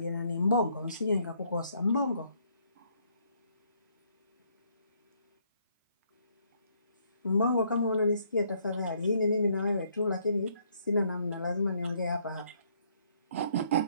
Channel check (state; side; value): inverted; both; correlation -0.68